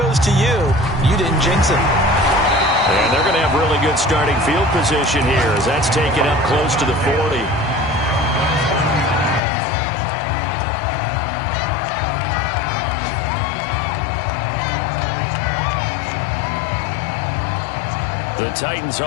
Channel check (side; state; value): right; drops out; at 9.4 s